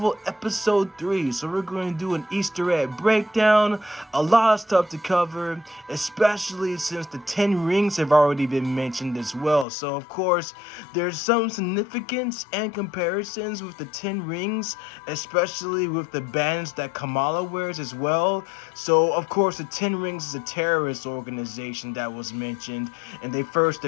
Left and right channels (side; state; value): right; drops out; at 9.7 s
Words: Episode 3. So we're going to do an Easter egg breakdown, a lot of stuff to cover, especially since the 10 rings have already been mentioned as well. So of course, there's some significance and comparisons with the 10 rings, especially with the bands that Kamala wears as well. So of course, the 10 rings is a terrorist organization that was mentioned, and they first